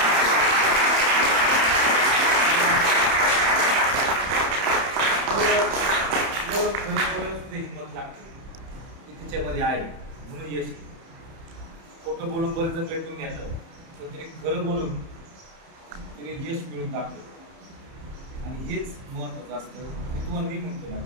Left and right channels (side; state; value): left; late; 30 ms